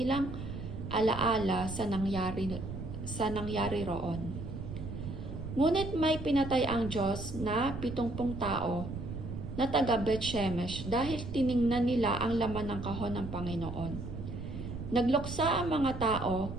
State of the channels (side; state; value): right; noise; rumble, 8 dB below the sound